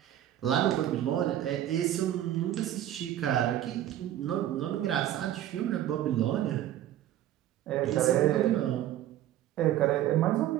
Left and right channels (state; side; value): quieter; left; 12.4 dB